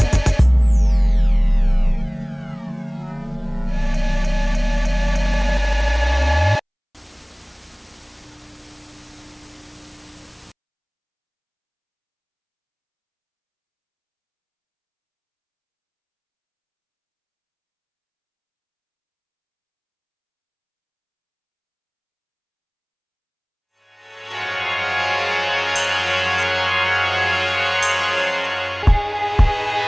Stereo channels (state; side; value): identical; both; correlation 1.00